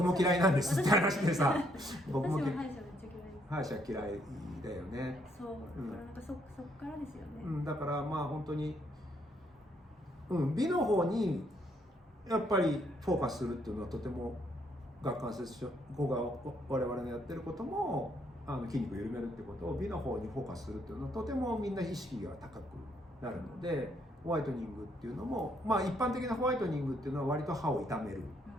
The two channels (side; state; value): both; normal; correlation 0.71